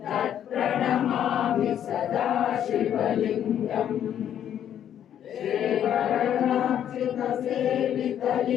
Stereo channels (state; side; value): quieter; right; 10.0 dB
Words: तत्प्रणमामि सदा शिवलिङ्गम्